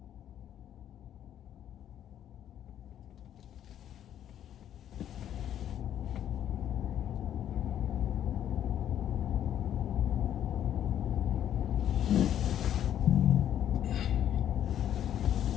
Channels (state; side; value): quieter; right; 10.5 dB